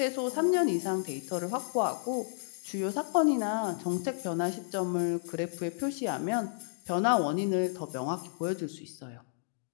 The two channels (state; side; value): silent; right; digital silence